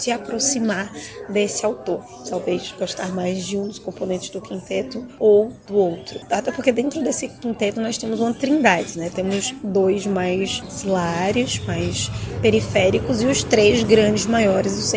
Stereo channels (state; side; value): identical; both; correlation 1.00